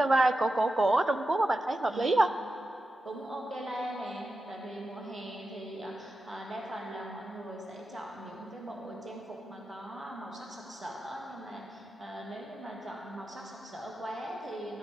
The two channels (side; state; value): both; normal; correlation 0.91